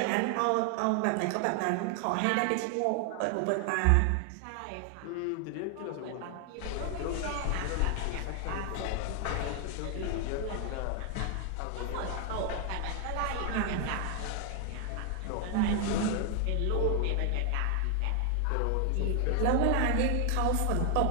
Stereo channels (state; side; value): different; both; correlation 0.00